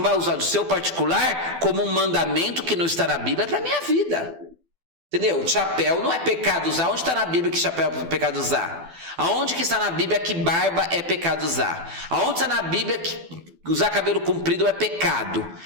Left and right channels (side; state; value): left; late; 12 ms